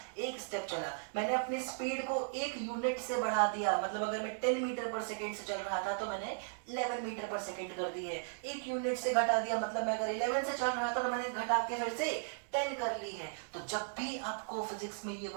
एक स्टेप चला। मैंने अपनी स्पीड को एक यूनिट से बढ़ा दिया, मतलब अगर मैं 10 मीटर पर सेकेंड से चल रहा था तो मैंने 11 मीटर पर सेकेंड कर दी है। एक यूनिट से घटा दिया, मतलब मैं अगर 11 से चल रहा था तो मैंने घटा के फिर से 10 कर ली है। तो जब भी आपको फिजिक्स में ये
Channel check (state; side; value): silent; left; digital silence